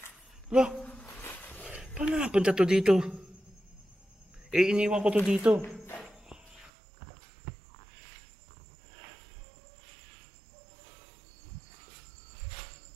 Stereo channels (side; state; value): left; drops out; at 6.7 s